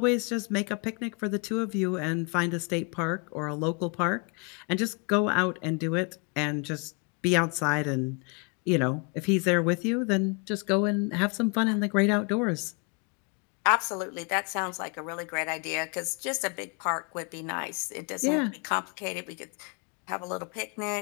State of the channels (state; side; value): quieter; right; 34.4 dB